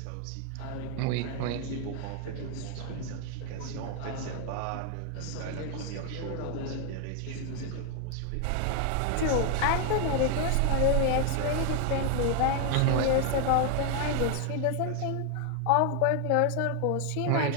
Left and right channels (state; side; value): different; both; correlation 0.00